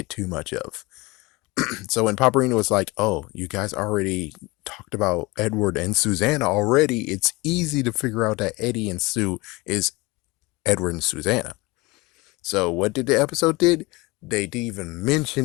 too much of. So when Paparina was like, "Oh, you guys already talked about Edward and Susanna already," it's easy to figure out that Eddie and Sue is Edward and Susanna. So what did the episode did? They didn't even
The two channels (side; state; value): right; quieter; 23.0 dB